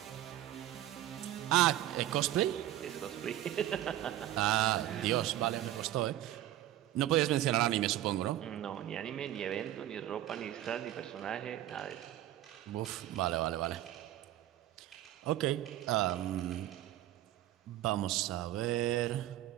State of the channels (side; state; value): left; quieter; 13.5 dB